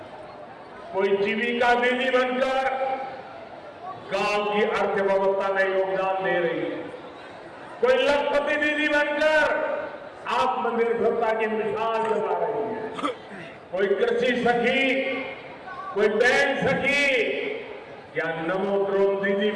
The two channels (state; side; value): identical; both; correlation 1.00